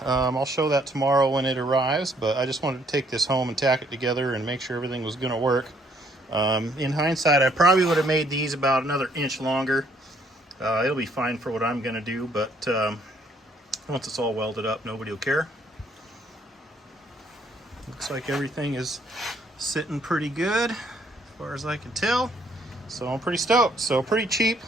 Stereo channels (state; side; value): normal; both; correlation 0.66